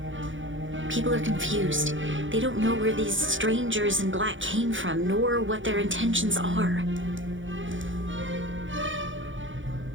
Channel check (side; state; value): left; late; 0.56 ms